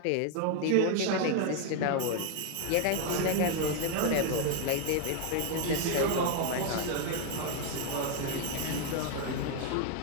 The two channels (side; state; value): both; different; correlation 0.01